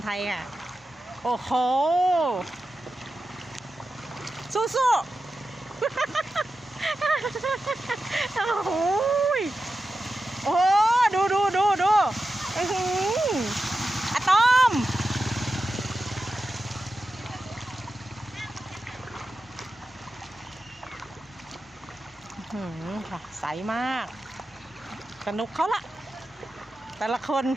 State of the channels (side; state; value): both; normal; correlation 0.91